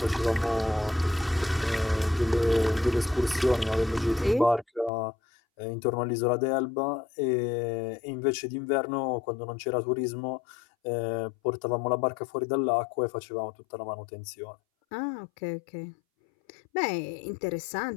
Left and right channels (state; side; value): drops out; right; at 4.9 s